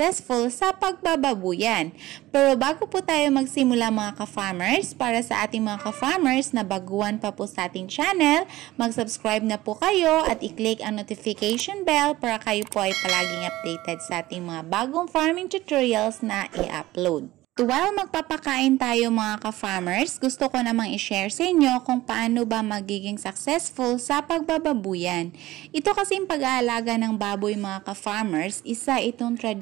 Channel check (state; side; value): quieter; left; 17.1 dB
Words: sa pagbababuyan. Pero bago po tayo magsimula mga ka-farmers, para sa ating mga ka-farmers na baguhan pa po sa ating channel, mag-subscribe na po kayo at i-click ang notification bell para kayo po ay palaging updated sa ating mga bagong farming tutorials na i-upload. While magpapakain tayo mga ka-farmers, gusto ko namang i-share sa inyo kung paano ba magiging successful sa pagbababuyan. Ito kasing pag-aalaga ng baboy mga ka-farmers, isa itong